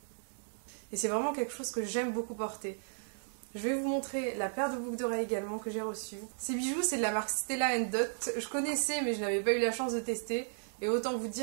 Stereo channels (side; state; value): left; silent; digital silence